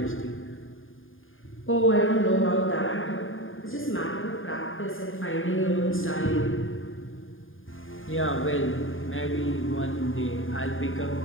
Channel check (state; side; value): late; right; 0.59 ms